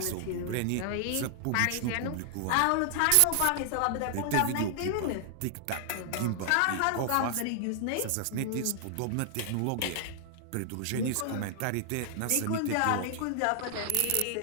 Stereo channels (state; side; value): different; both; correlation 0.00